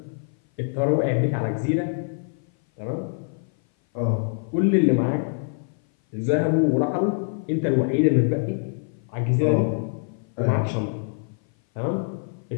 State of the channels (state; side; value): silent; right; 58 dB below the other